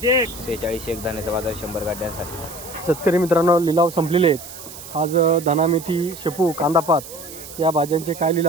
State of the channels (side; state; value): right; noise; hiss, 14 dB below the sound